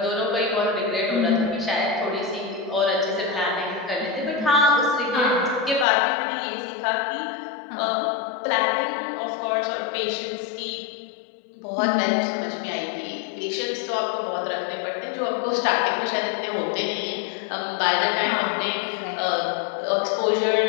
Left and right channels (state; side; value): drops out; right; at 5.9 s